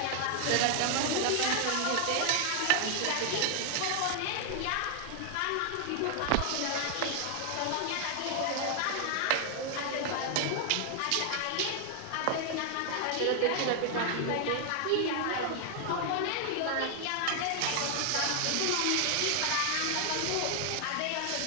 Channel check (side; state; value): both; different; correlation 0.00